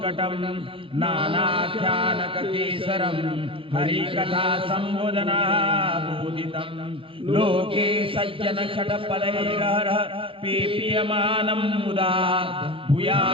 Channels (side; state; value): left; late; 0.26 ms